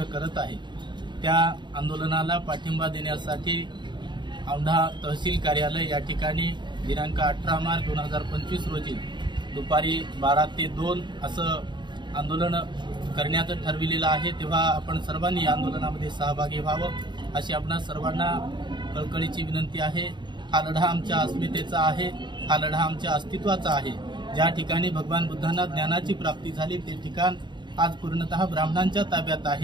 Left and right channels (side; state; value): left; late; 0.22 ms